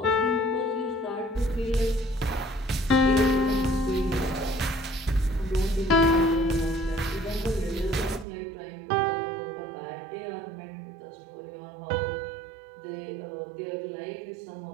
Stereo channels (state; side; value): drops out; left; at 8.2 s